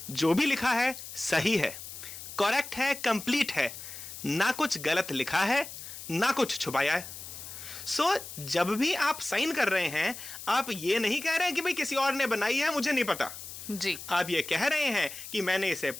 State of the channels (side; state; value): left; noise; hiss, 11 dB below the sound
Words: जो भी लिखा है सही है, करेक्ट है, कंप्लीट है, ना कुछ गलत लिखा है, ना कुछ छुपाया है। सो जब भी आप साइन कर रहे हैं, आप ये नहीं कह रहे हैं कि भाई किसी और ने बनाई है, मुझे नहीं पता जी। आप ये कह रहे हैं कि मैंने इसे